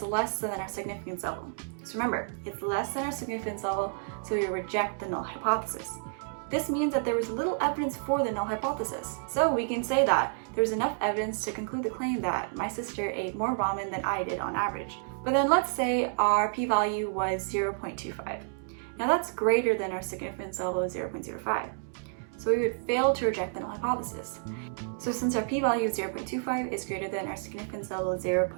less than our significance level. So remember, it's less than our significance level, so we reject the null hypothesis. This means that there was little evidence for the null hypothesis. So we can say that there's enough evidence to conclude the claim that my sister ate more ramen than I did on average. But then let's say our p-value was 0.25. Now that's greater than our significance level of 0.05. So we would fail to reject the null hypothesis. So since our p-value of 0.25 is greater than our significance level of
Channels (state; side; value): silent; left; digital silence